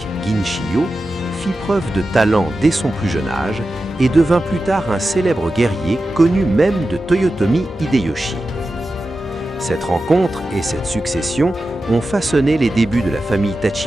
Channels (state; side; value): normal; both; correlation 0.92